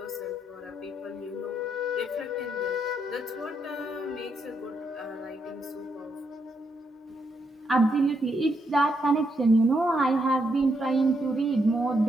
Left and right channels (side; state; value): both; normal; correlation 0.79